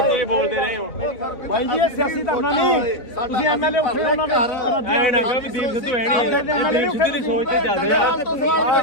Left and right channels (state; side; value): late; right; 4.0 ms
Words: ਬੋਲਦੇ ਰਹੇ ਹੋ ਬਾਈ ਜੀ ਇਹ ਸਿਆਸੀ ਧਰਨਾ ਨਹੀਂ ਤੁਸੀਂ ਐਮਐਲਏ ਉੱਠੇ ਉਹਨਾਂ ਦਾ ਐ ਨਾ ਕਹੋ ਵੀ ਦੀਪ ਸਿੱਧੂ ਹੈ ਨਹੀਂ ਇਹ ਦੀਪ ਸਿੱਧੂ ਦੀ ਸੋਚ ਤੇ ਚੱਲਦੇ ਆ